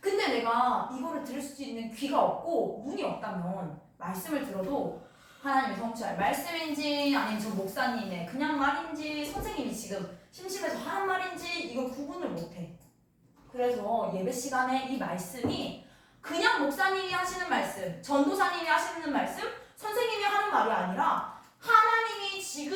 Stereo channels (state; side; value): identical; both; correlation 1.00